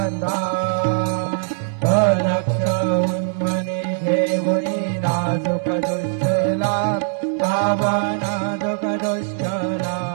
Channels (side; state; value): left; silent; 65 dB below the other